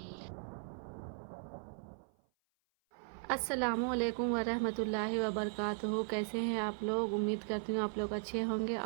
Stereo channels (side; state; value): left; silent; 53 dB below the other